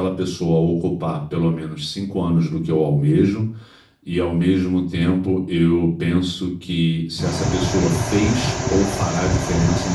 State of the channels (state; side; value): identical; both; correlation 1.00